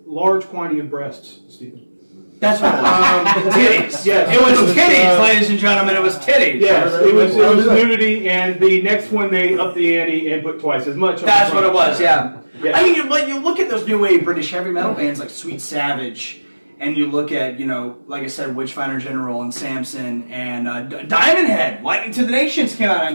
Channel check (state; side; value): inverted; both; correlation -1.00